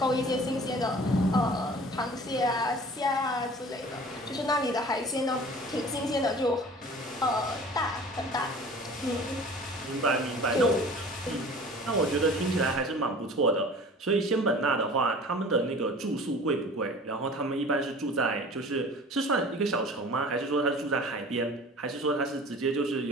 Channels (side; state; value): both; normal; correlation 0.44